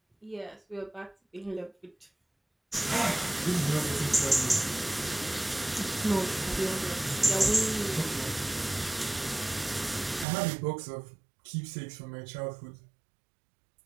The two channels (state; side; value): drops out; left; at 10.2 s